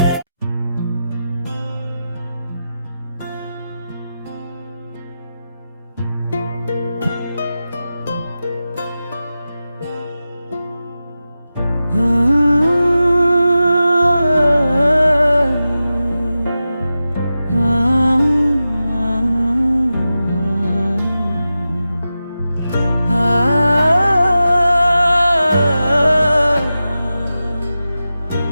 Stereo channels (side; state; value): both; inverted; correlation -0.93